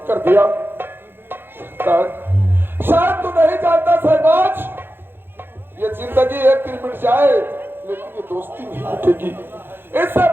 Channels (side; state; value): left; late; 0.10 ms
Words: कर दिया। शायद तू नहीं जानता सहबाज, ये जिंदगी एक दिन मिट जाए लेकिन ये दोस्ती नहीं मिटेगी। इससे